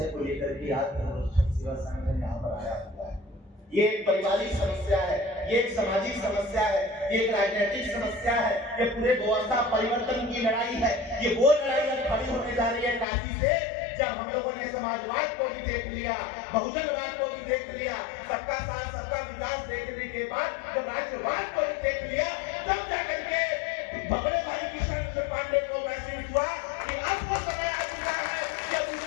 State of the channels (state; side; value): drops out; right; at 13.1 s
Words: को लेकर के आज धर्मरक्षक सेवा संगठन यहाँ पर आया हुआ है। ये एक पारिवारिक समस्या है, ये एक सामाजिक समस्या है, ये एक राजनीतिक समस्या है, ये पूरे व्यवस्था परिवर्तन की लड़ाई है। ये वो लड़ाई अब खड़ी होने जा रही है काशी से, जब हम लोगों ने समाजवाद को भी देख लिया, बहुजनवाद को भी देख लिया, सबका साथ सबका विकास देखने के बाद जब राष्ट्रवाद को भी देख लिया, तब जाकर के बड़े भाई किशन पांडे को महसूस हुआ कि अब वो समय आ चुका है कि अब इस